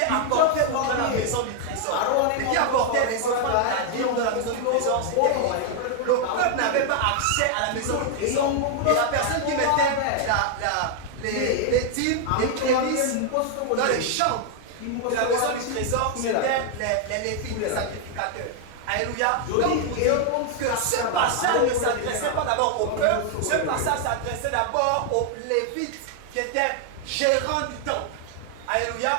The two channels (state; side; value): different; both; correlation 0.00